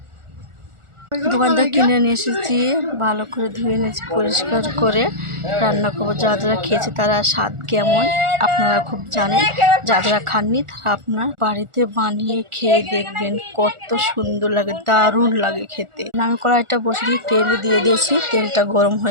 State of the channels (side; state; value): left; late; 1.4 ms